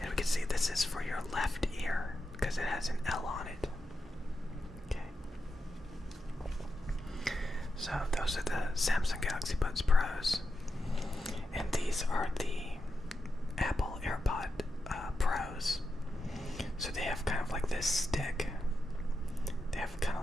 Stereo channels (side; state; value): both; normal; correlation 0.88